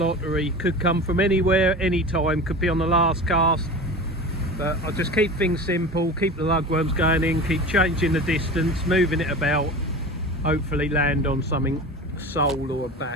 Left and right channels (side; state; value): both; normal; correlation 0.33